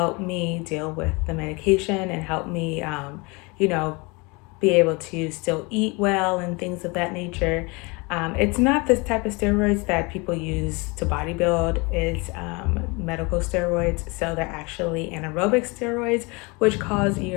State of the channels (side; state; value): right; quieter; 27.6 dB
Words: me deal with the medication and help me, be able to still eat well and things of that nature. It's not this type of steroids that people use to bodybuild. It's medical steroids. So they're actually anaerobic steroids, which cause